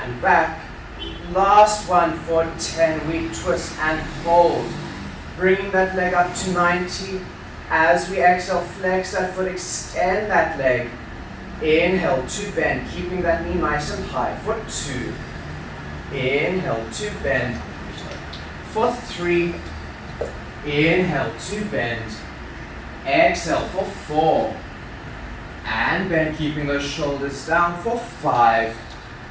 back. Last one for 10. We twist and hold. Bringing that leg up to 90. As we exhale, flex that foot, extend that leg. Inhale to bend, keeping that knee nice and high for 2. Inhale to bend. For 3. Inhale to bend. Exhale for 4. And bend, keeping those shoulders down for 5.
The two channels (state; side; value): identical; both; correlation 1.00